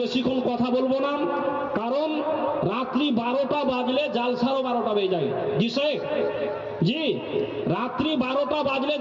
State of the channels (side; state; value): both; identical; correlation 1.00